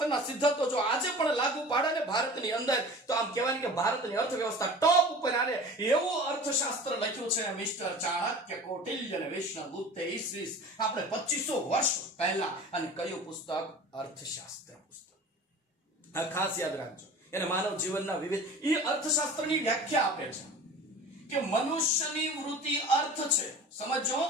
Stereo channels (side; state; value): both; normal; correlation 0.39